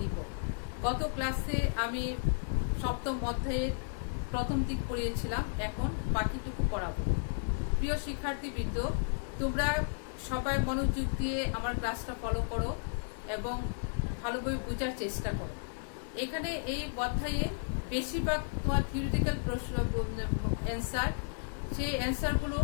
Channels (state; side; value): silent; right; digital silence